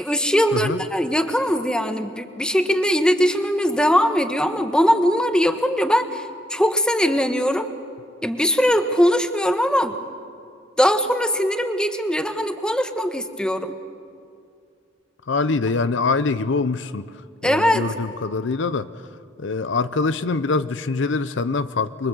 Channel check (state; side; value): normal; both; correlation 0.69